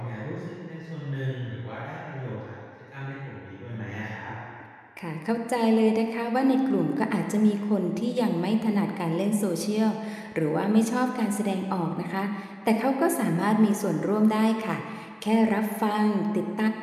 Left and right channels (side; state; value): both; identical; correlation 1.00